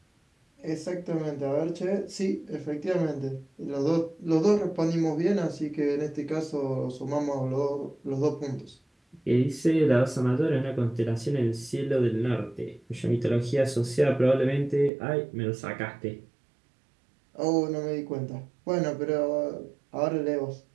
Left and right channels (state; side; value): drops out; left; at 14.9 s